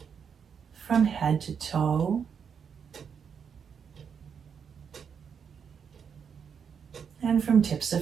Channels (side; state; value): left; quieter; 7.0 dB